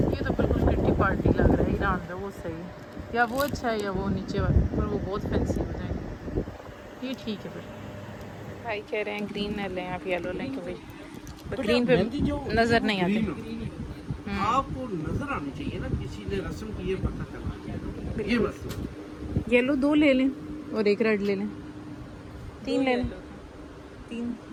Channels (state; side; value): identical; both; correlation 1.00